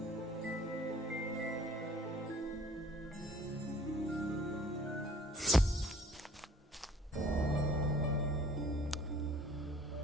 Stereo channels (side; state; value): both; normal; correlation 0.54